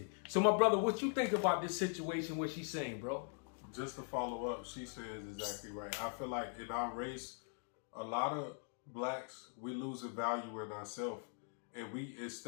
So my brother, what you think about this situation, what she's saying, bro? Just to follow up, she says exactly right. I feel like in our race, a lot of blacks, we losing value in ourselves. And we,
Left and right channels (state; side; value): silent; right; 50 dB below the other